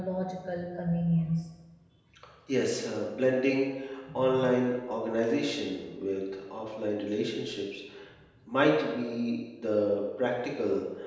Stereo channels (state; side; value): identical; both; correlation 1.00